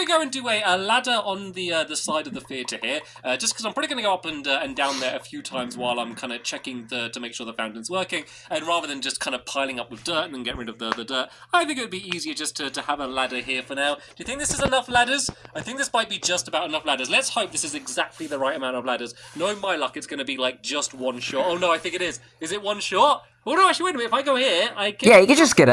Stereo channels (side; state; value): both; identical; correlation 1.00